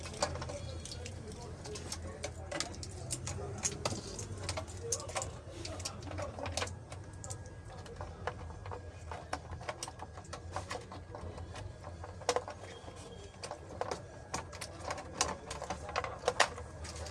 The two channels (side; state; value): both; identical; correlation 1.00